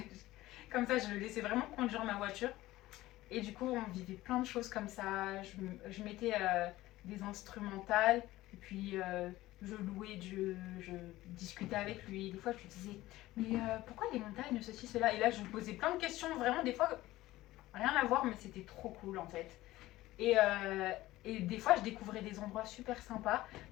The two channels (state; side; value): quieter; right; 16.9 dB